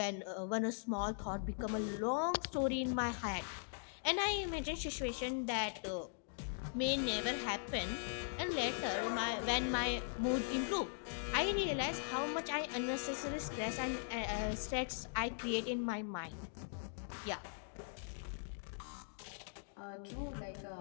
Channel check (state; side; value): silent; right; digital silence